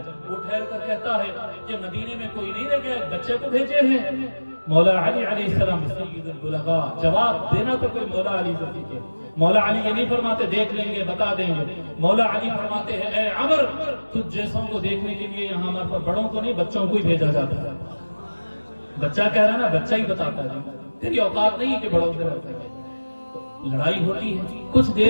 وہ ٹھہر کر کہتا ہے کہ مدینے میں کوئی نہیں رہ گیا، بچے کو بھیجے ہیں۔ مولا علی علیہ السلام سید البلغاء، جواب دینا تو کوئی مولا علی سے سیکھے۔ مولا علی یہ نہیں فرماتے دیکھ لیں گے بتا دیں گے، مولا علی فرماتے ہیں اے عمر، تجھ جیسوں کو دیکھنے کے لیے یہاں ہمارے پر بڑوں کو نہیں بچوں کو ہی بھیجا جاتا ہے۔ بچہ کہہ رہا ہے نا، بچہ ہی بتاتا ہے، تیری اوقات نہیں ہے کہ بڑوں سے رہتا ہے۔ لڑائی ہوتی ہے، کچھ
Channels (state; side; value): inverted; both; correlation -1.00